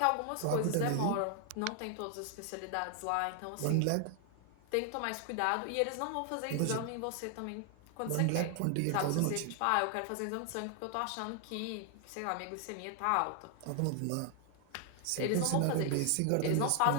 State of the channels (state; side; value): different; both; correlation 0.00